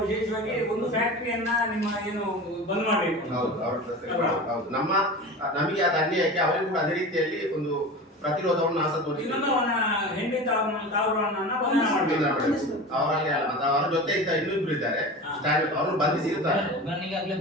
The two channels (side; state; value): both; normal; correlation 0.32